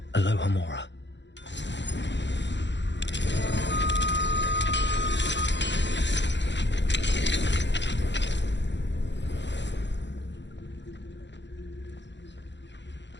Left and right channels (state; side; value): late; right; 0.52 ms